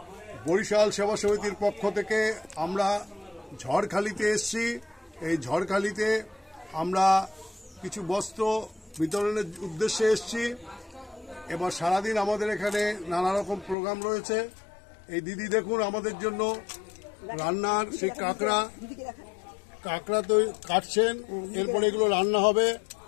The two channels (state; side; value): drops out; right; at 13.8 s